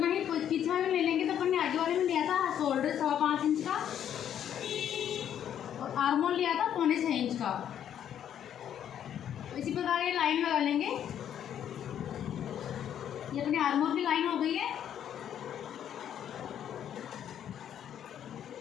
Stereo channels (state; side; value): quieter; right; 9.8 dB